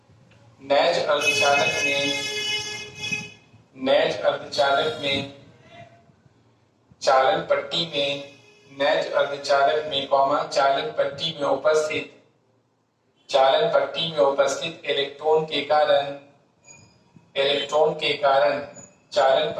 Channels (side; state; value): both; identical; correlation 1.00